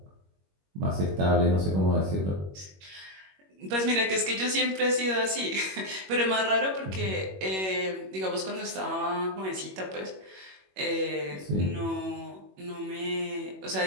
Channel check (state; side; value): late; left; 21 ms